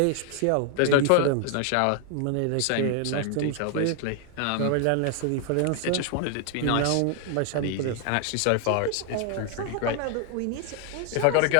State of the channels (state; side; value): different; both; correlation 0.00